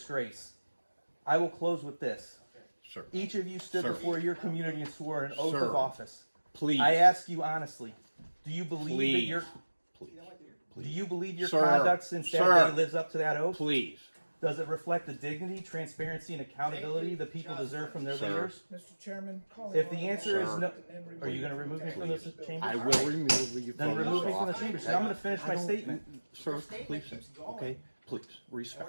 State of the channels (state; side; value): inverted; both; correlation -1.00